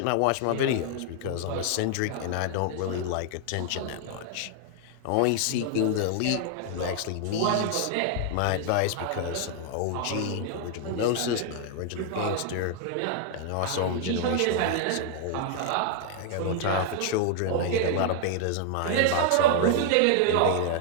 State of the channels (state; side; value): different; both; correlation 0.00